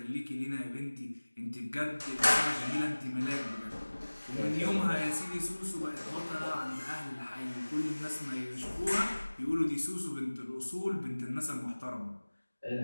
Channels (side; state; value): both; inverted; correlation -1.00